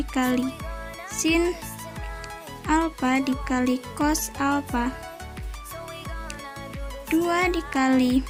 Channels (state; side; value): identical; both; correlation 1.00